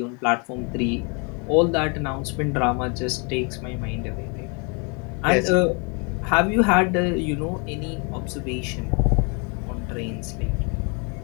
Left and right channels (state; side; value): quieter; right; 34.1 dB